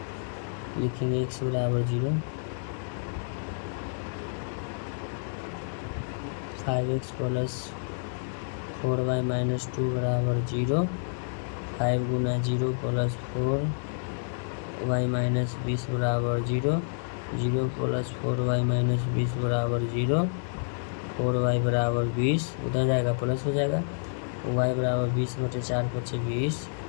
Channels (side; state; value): right; silent; digital silence